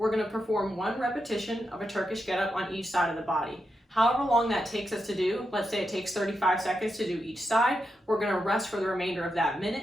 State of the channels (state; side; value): normal; both; correlation 0.86